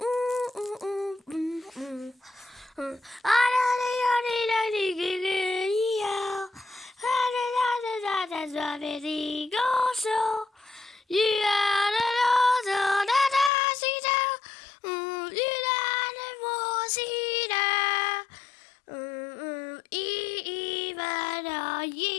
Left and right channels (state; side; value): drops out; right; at 13.5 s